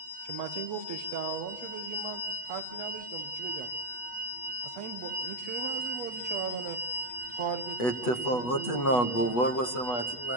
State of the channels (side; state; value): right; late; 8.2 ms